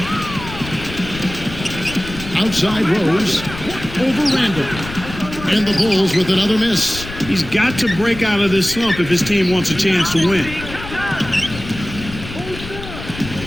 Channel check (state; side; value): noise; left; rumble, 12 dB below the sound